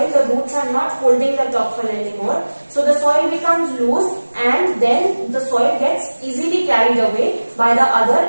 The roots are not holding the topsoil anymore. So the soil becomes loose, and then the soil gets easily carried away by the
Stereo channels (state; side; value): inverted; both; correlation -1.00